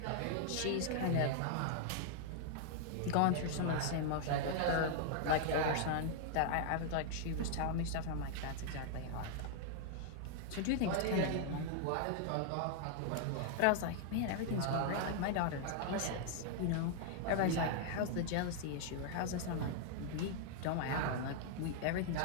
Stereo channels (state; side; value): different; both; correlation -0.01